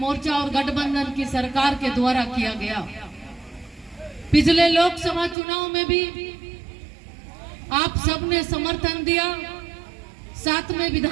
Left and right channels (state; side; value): drops out; left; at 5.4 s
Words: और गठबंधन की सरकार के द्वारा किया गया। पिछले लोकसभा चुनाव में भी आप सबने समर्थन दिया। साथ में